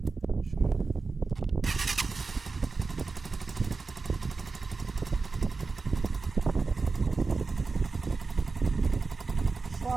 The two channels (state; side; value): quieter; left; 4.2 dB